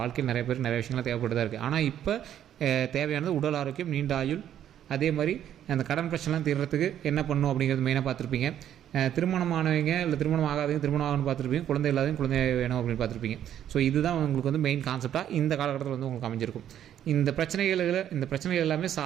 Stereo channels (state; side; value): quieter; left; 10.6 dB